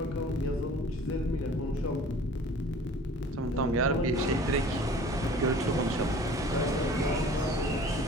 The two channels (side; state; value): both; normal; correlation 0.46